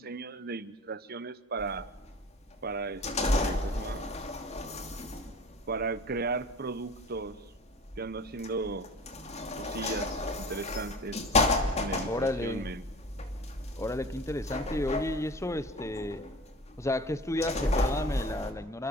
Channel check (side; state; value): both; normal; correlation 0.39